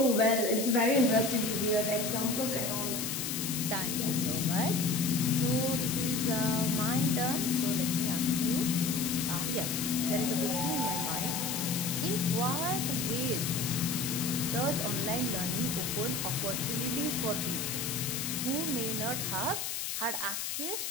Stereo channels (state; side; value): noise; left; hiss, 3 dB below the sound